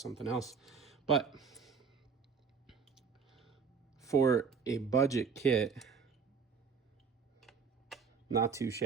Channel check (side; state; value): left; quieter; 5.8 dB